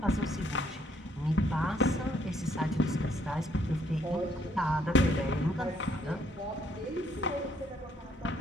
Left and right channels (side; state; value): both; normal; correlation 0.68